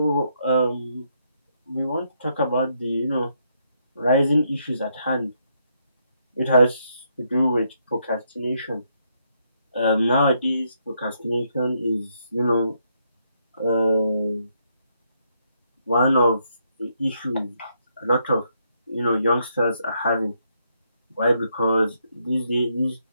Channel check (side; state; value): both; inverted; correlation -0.76